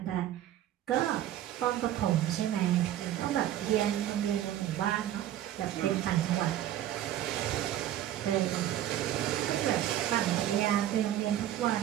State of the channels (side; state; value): left; quieter; 12.2 dB